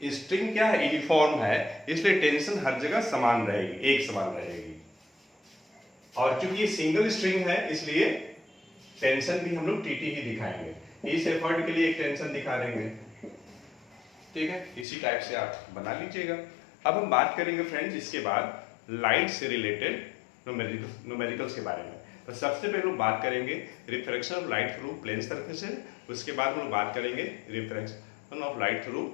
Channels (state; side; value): drops out; right; at 14.9 s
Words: स्ट्रिंग क्या है, यूनिफॉर्म है, इसलिए टेंशन हर जगह समान रहेगी, एक समान रहेगी। और चूंकि ये सिंगल स्ट्रिंग है, इसलिए टेंशन भी हम लोग टीटी ही दिखाएंगे। इस एफर्ट के लिए एक टेंशन दिखा देंगे, ठीक है। इसी टाइप से आप बना लीजिएगा। अब हम बात करेंगे फ्रेंड्स इसके बाद लाइट से रिलेटेड न्यूमेरिकल्स के बारे में। तो सबसे पहले हम बात करेंगे refraction of light through plane surfaces, उसके बाद हम लोग बात करेंगे refraction of light through